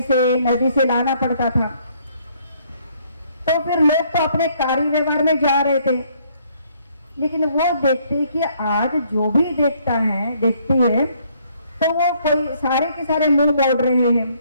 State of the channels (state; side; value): inverted; both; correlation -0.66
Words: से, नदी से लाना पड़ता था। तो फिर लोग तो अपने कार्य व्यवहार में जा रहे थे, लेकिन वो देखते कि आज जो भी देखती है, तो वो कोई सारे के सारे मुंह मोड़ रहे हैं,